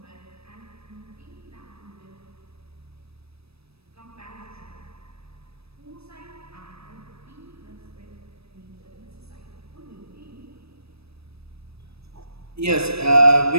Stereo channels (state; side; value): late; left; 0.78 ms